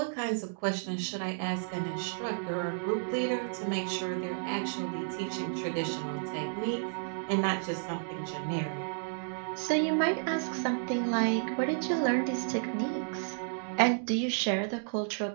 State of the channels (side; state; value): left; silent; digital silence